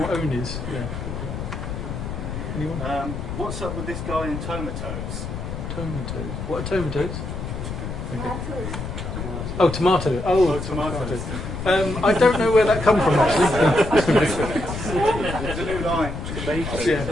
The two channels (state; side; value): noise; left; rumble, 6 dB below the sound